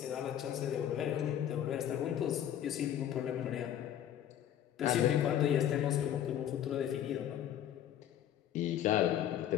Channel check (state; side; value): quieter; right; 10.7 dB